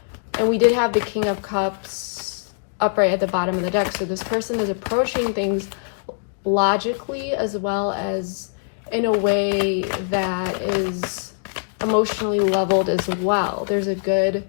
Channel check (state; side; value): silent; right; digital silence